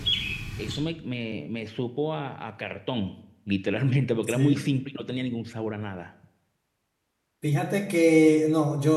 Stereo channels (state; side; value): identical; both; correlation 1.00